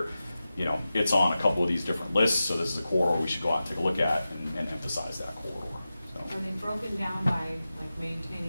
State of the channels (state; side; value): inverted; both; correlation -0.94